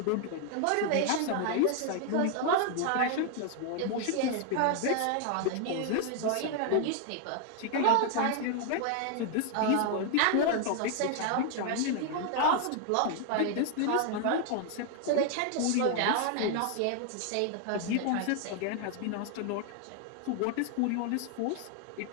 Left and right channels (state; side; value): different; both; correlation 0.00